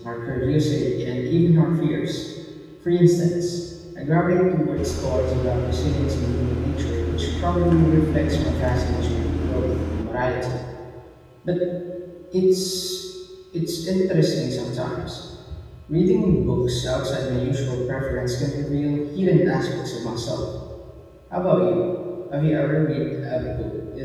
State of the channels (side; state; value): both; identical; correlation 1.00